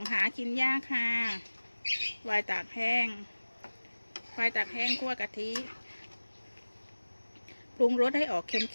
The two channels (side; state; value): both; inverted; correlation -1.00